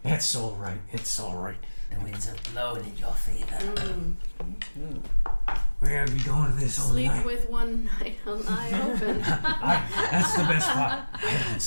It's all right. It's all right. The winds are blowing in your favor. We're gonna be going to this all Sleep night. with one eye open. That's the best part. I don't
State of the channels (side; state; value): both; inverted; correlation -1.00